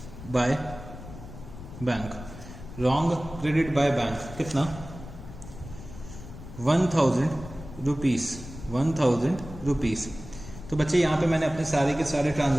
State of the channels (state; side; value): noise; left; rumble, 13 dB below the sound